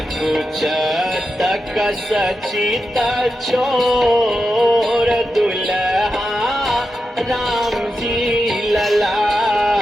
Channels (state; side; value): normal; both; correlation 0.89